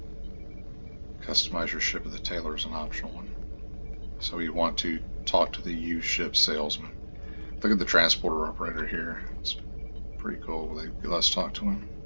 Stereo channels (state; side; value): inverted; both; correlation -1.00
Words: Customize your ship with the tailor is an optional one. So you want to talk to the used ship salesman. Look at the transporter operator here. It's pretty cool. Let's talk to him.